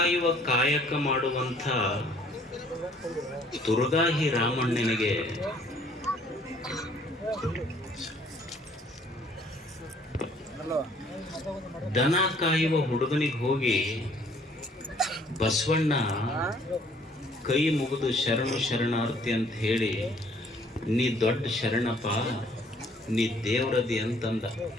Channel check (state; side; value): normal; both; correlation 0.60